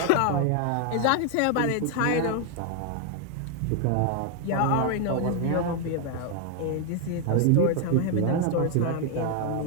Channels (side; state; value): both; different; correlation 0.00